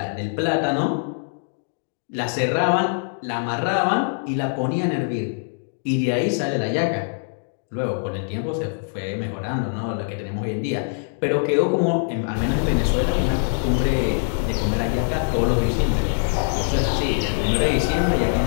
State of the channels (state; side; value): silent; right; digital silence